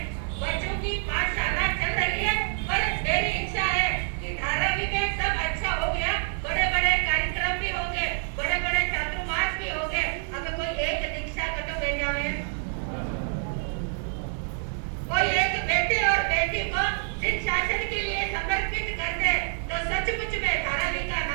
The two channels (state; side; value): silent; left; 60 dB below the other